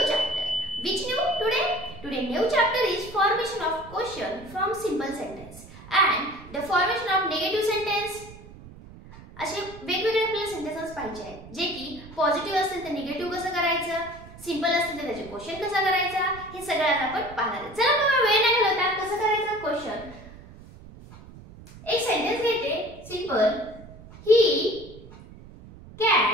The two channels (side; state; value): right; noise; rumble, 18 dB below the sound